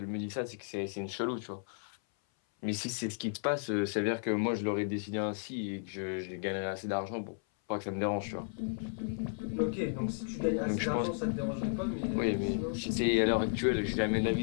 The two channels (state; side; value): silent; right; 55 dB below the other